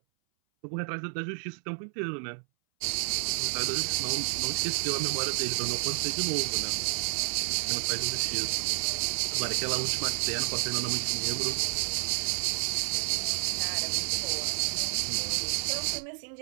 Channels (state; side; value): silent; left; 58 dB below the other